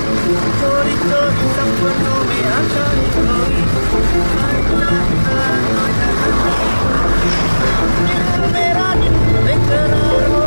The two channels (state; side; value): inverted; both; correlation -1.00